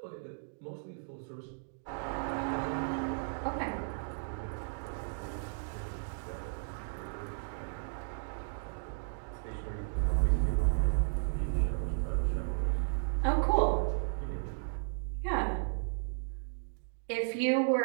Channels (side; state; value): left; silent; digital silence